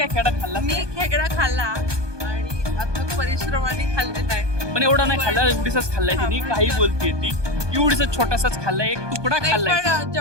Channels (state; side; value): late; left; 1.2 ms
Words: खेकडा खाल्ला? मी खेकडा खाल्ला आणि आता परिश्रमाने खाल्लेला आहे. पण एवढा नाही खाल्ला, एवढीचाच खाल्लाय तिने. काही बोलते ती, एवढीच छोटासाच खाल्लाय, एक तुकडा खाल्लाय. पण